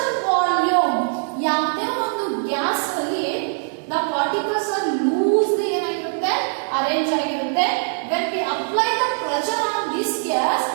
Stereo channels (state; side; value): silent; left; digital silence